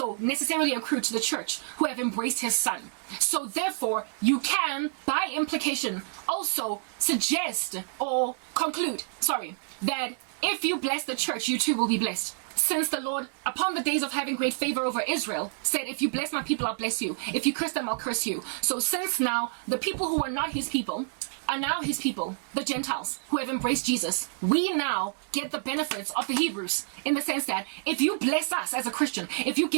necessarily accrue to the church who have embraced his son. So therefore, you can, by implication, also suggest or conclude, that if you bless the church, you too will be blessed. Since the Lord, upon the days of having great favor over Israel, said, if you bless my people, I'll bless you. If you curse them, I'll curse you. So since now, the people who are not his people are now his people, the Gentiles, who have embraced Jesus, we now get the benefits of the Hebrews, in the sense that if you bless us as a Christian, if you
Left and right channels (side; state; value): left; silent; 59 dB below the other